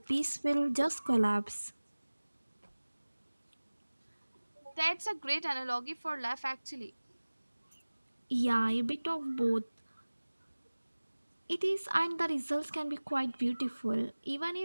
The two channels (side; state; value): both; inverted; correlation -1.00